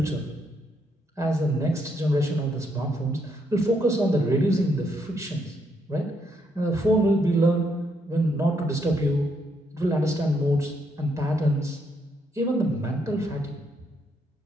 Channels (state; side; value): normal; both; correlation 0.75